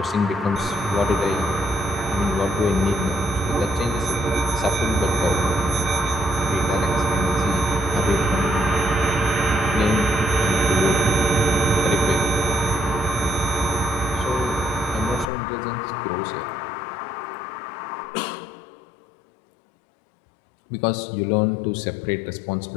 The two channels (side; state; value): right; drops out; at 15.3 s